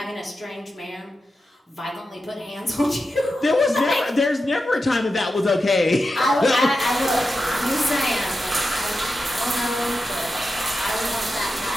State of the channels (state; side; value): normal; both; correlation 0.90